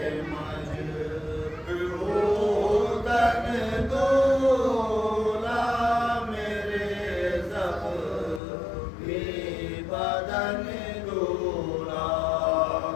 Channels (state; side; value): drops out; right; at 8.4 s